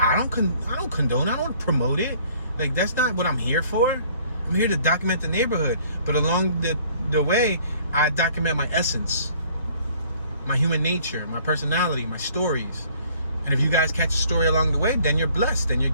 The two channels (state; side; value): inverted; both; correlation -0.57